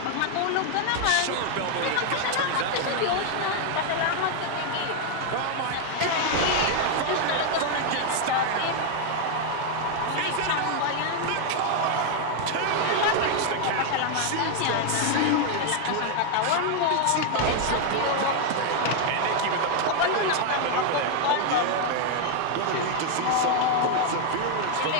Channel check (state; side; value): different; both; correlation 0.01